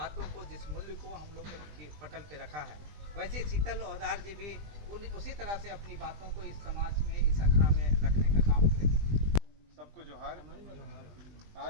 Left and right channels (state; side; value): late; left; 20 ms